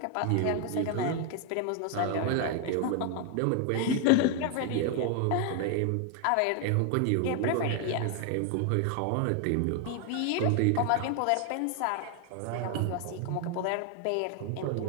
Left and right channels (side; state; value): both; different; correlation 0.00